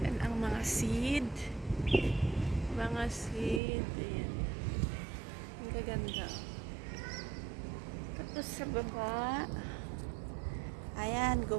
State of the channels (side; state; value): left; drops out; at 3.6 s